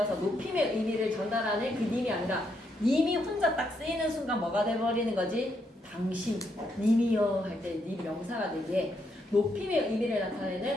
높임의 의미를 전달하는 그 님이 아니라 님이 혼자 딱 쓰이는 순간 뭐가 돼버리는 거지? 당신, 님이여 할 때 님 명사가 되기에 높임의 의미를 나타내는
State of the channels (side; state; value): both; normal; correlation 0.77